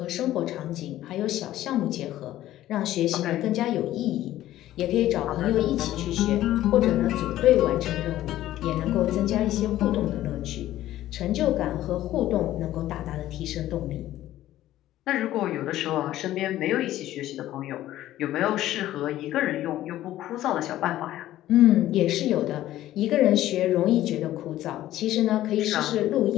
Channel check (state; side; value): quieter; right; 14.0 dB